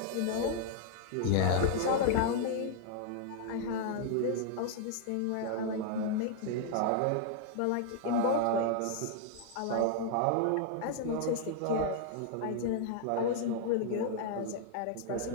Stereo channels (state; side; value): different; both; correlation 0.00